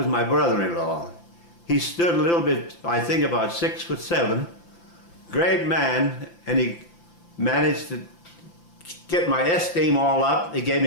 my brother-in-law. He stood a little bit, I think about 6'7", great man, and he managed to get my esteem all up. He gave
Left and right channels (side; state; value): right; late; 5.9 ms